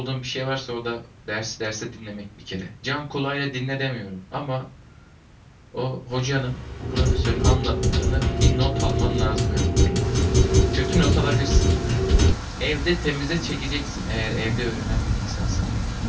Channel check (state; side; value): identical; both; correlation 1.00